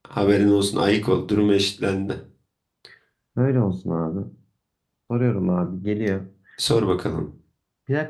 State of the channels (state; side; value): identical; both; correlation 1.00